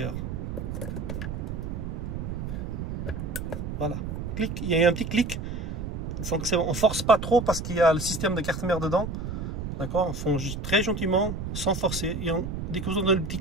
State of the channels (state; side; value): noise; right; rumble, 5 dB below the sound